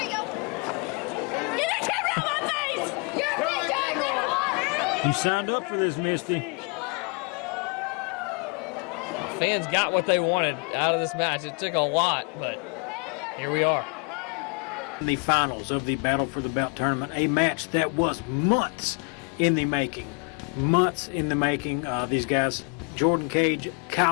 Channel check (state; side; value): quieter; right; 35.0 dB